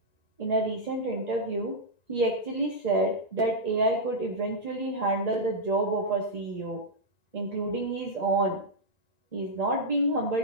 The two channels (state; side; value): late; right; 1.9 ms